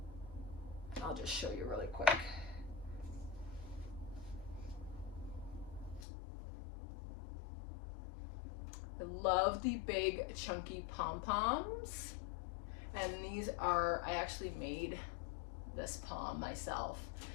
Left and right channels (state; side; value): drops out; right; at 6.1 s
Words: I'll just show you really quick. I love the big chunky pom-poms. And these are, I actually made this pom myself.